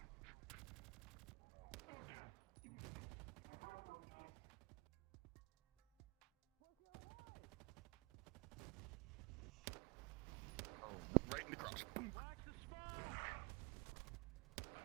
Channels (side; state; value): left; quieter; 28.0 dB